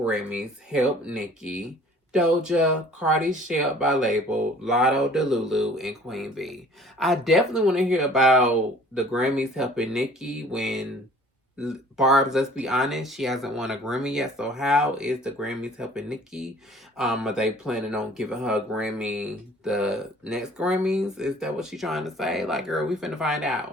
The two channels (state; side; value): normal; both; correlation 0.51